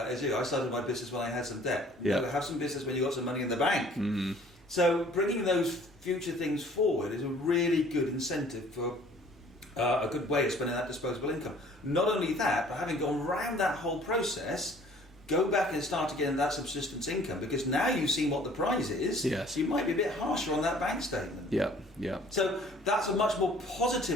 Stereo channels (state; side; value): normal; both; correlation 0.54